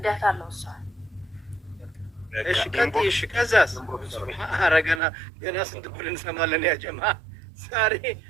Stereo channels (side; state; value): left; drops out; at 5.0 s